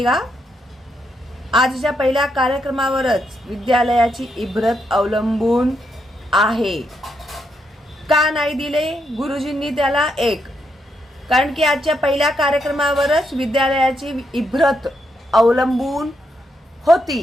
आजच्या पहिल्या कार्यक्रमावरच विद्यालयाची इभ्रत अवलंबून आहे. का नाही दिले गुरुजींनी त्याला 1? कारण की आजच्या पहिल्या कार्यक्रमावरच विद्यालयाची इभ्रत अवलंबून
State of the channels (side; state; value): both; normal; correlation 0.79